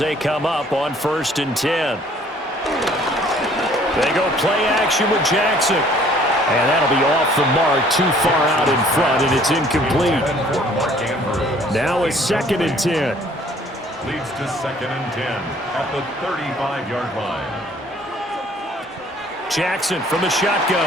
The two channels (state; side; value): normal; both; correlation 0.57